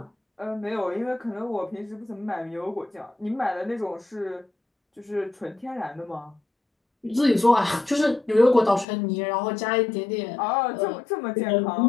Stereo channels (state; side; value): drops out; right; at 8.8 s